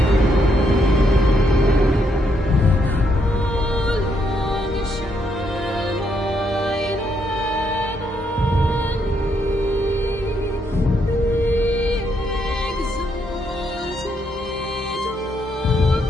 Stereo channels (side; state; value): both; normal; correlation 0.76